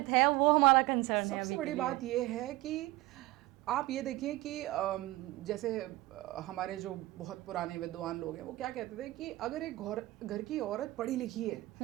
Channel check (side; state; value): left; quieter; 18.9 dB